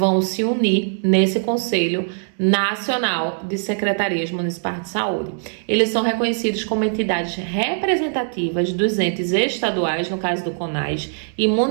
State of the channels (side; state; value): left; silent; digital silence